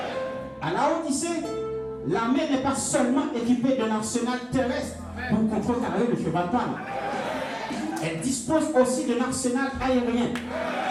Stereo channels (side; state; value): both; identical; correlation 1.00